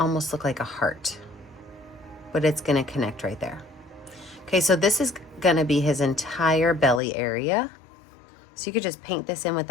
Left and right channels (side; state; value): right; drops out; at 7.0 s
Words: look like a heart, but it's gonna connect right there. Okay, so this is gonna be his entire belly area. So you could just paint this in with